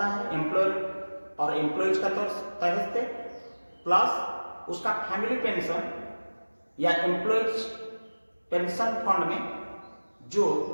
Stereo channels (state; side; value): inverted; both; correlation -1.00